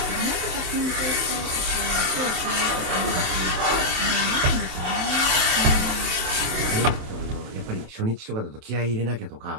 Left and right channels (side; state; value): left; late; 27 ms